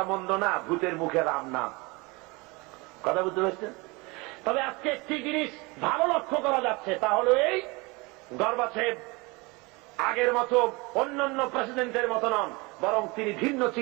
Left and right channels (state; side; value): quieter; left; 25.9 dB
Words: মন্দ না, ভূতের মুখে রাম নাম। কথা বুঝতে পারছেন? তবে আজকে একটি জিনিস ভালো লক্ষ্য করা যাচ্ছে, তা হল এই, গর্বাচেভ আগের মতো অন্যান্য প্রেসিডেন্টের মতো নন, বরং তিনি ভিন্ন